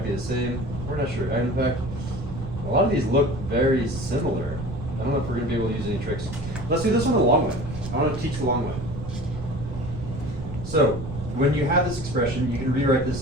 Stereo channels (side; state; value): right; noise; rumble, 8 dB below the sound